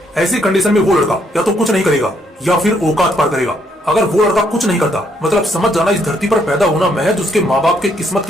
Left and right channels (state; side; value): normal; both; correlation 0.72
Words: ऐसी कंडीशन में वो लड़का या तो कुछ नहीं करेगा या फिर औकात पार करेगा। अगर वो लड़का कुछ नहीं करता, मतलब समझ जाना इस धरती पर पैदा होना महज उसके माँ बाप के किस्मत